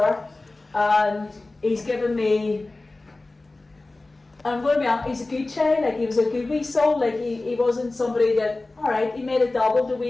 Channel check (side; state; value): right; quieter; 3.1 dB